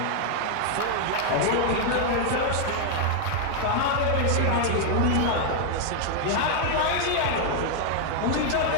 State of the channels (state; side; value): different; both; correlation 0.00